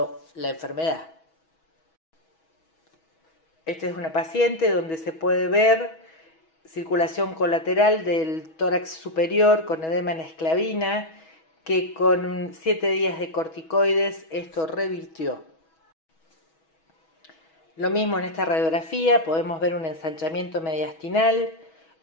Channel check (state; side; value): late; right; 6.2 ms